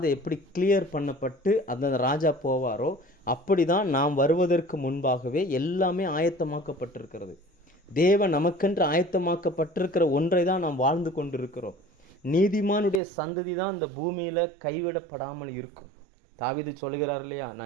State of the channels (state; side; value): drops out; left; at 13.0 s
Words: எப்படி கிளியர் பண்ணப்பட்டு அந்த ராஜா போவாரோ அப்படி தான் நாம் வருவதற்கு முன்பாகவே எல்லாமே ஆயத்தமாக்கப்பட்டிருக்கிறது. தேவன் நமக்கென்று ஆயத்தமாக்கப்பட்டிருக்கிற ஒன்றை தான் நாம் வாழ்ந்து கொண்டிருக்கிறோம். நீதிமானுடைய சந்ததி தான் இந்த பூமியில் கைவிடப்படாமல் இருக்கும். தாவீது சொல்கிறார் இல்லையா,